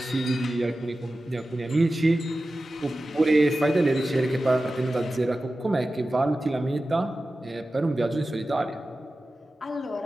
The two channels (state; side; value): normal; both; correlation 0.94